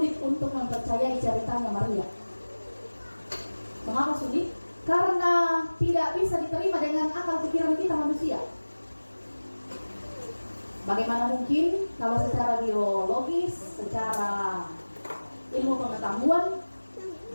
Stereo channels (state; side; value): inverted; both; correlation -1.00